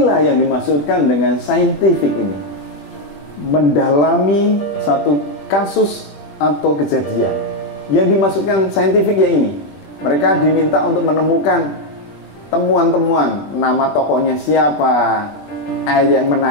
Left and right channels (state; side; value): late; right; 21 ms